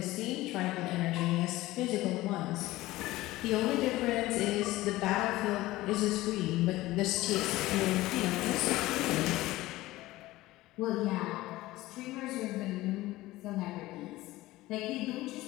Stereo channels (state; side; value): quieter; right; 17.8 dB